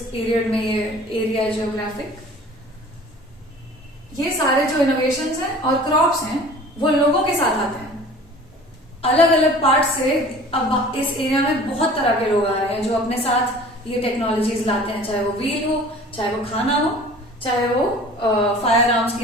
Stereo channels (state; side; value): normal; both; correlation 0.45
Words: पीरियड में ये एरिया है जियोग्राफिक, ये सारे जो इनोवेशंस हैं और क्रॉप्स हैं वो लोगों के साथ आते हैं अलग अलग पार्ट से। अब इस एरिया में बहुत तरह के लोग आ रहे हैं जो अपने साथ ये टेक्नोलॉजीज लाते हैं, चाहे वो व्हील हो, चाहे वो खाना हो, चाहे वो फायर आर्म्स